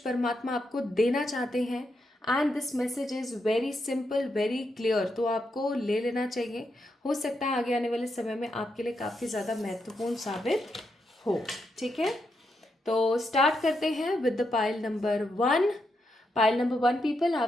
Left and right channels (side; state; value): both; normal; correlation 0.82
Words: परमात्मा आपको देना चाहते हैं। And this message is very simple, very clear, तो आपको ले लेना चाहिए। हो सकता है आगे आने वाले समय में आपके लिए काफ़ी ज़्यादा महत्वपूर्ण साबित हो। ठीक है, तो स्टार्ट करते हैं with the pile number 1। Pile number 1 people,